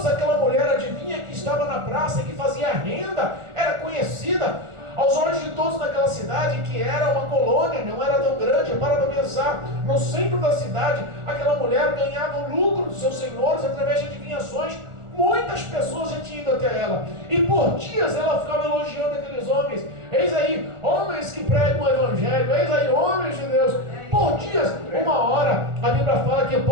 aquela mulher adivinha que estava na praça e que fazia renda, era conhecida. Aos olhos de todos naquela cidade, que era uma colônia, não era tão grande, para pensar, no centro da cidade, aquela mulher ganhava o lucro dos seus senhores através de adivinhações. Muitas pessoas já tinham ido até ela, e por dias ela ficava elogiando aqueles homens. Eis aí, homens que pregam o evangelho, eis aí, homens de Deus. Por dias, uma hora, a Bíblia fala que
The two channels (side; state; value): left; late; 1.4 ms